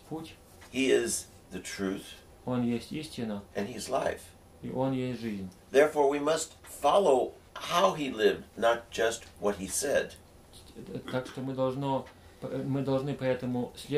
путь, He is the truth, Он есть истина, and He's life. и Он есть жизнь. Therefore we must follow how He lived, not just what He said. Так что мы должны поэтому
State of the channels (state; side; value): identical; both; correlation 1.00